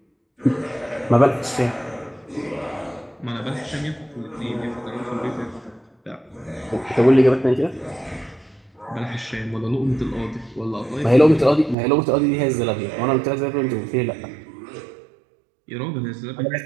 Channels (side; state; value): left; drops out; at 11.8 s